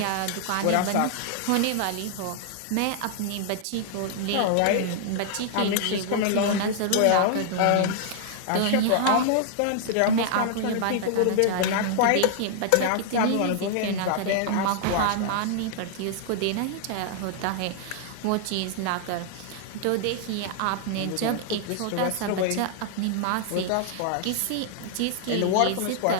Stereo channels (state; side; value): different; both; correlation -0.01